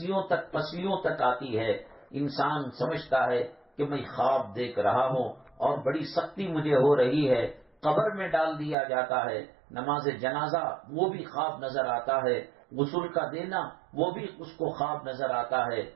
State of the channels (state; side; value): drops out; left; at 8.8 s